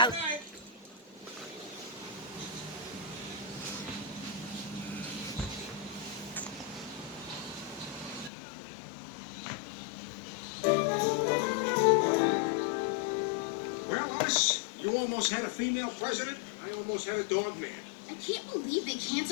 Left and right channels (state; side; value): drops out; right; at 8.3 s